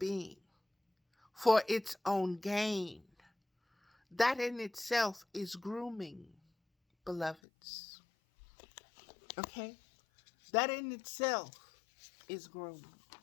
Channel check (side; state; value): right; drops out; at 7.4 s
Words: for its own gain. That in itself is grooming, beloveds. Okay? That in itself is grooming.